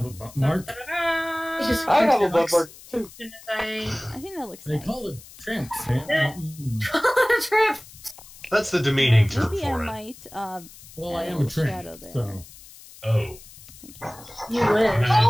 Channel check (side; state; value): left; noise; hiss, 20 dB below the sound